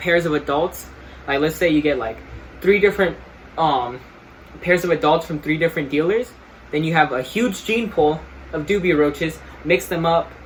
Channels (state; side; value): identical; both; correlation 1.00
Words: of adults. Like, let's say you get like 3 different pairs of adults from 3 different dealers. Then you have a huge gene pool of dubia roaches. Mix them up